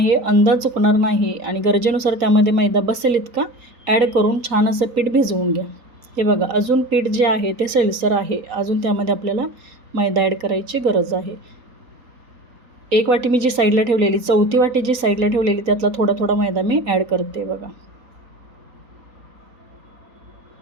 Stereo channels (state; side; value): late; left; 3.9 ms